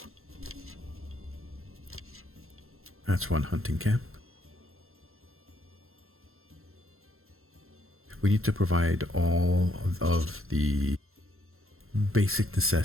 That's one hunting camp. We need to provide all of the basic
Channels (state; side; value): late; left; 0.61 ms